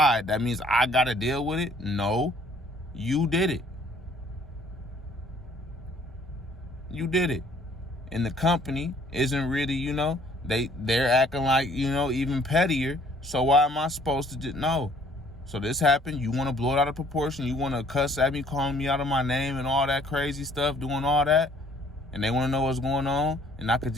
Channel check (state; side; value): normal; both; correlation 0.59